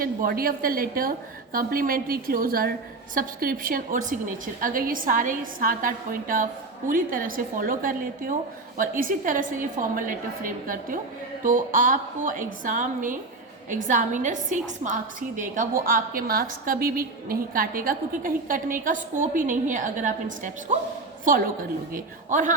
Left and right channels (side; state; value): left; quieter; 3.4 dB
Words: body of the letter, complimentary closure, subscription और सिग्नेचर, अगर ये सारे 7-8 पॉइंट आप पूरी तरह से फॉलो कर लेते हो और इसी तरह से ये फॉर्मल लेटर फ्रेम करते हो, तो आपको एग्ज़ाम में एग्जामिनर 6 मार्क्स ही देगा, वो आपके मार्क्स कभी भी नहीं काटेगा, क्योंकि कहीं कटने का स्कोप ही नहीं है अगर आप इन स्टेप्स को फॉलो कर लोगे। और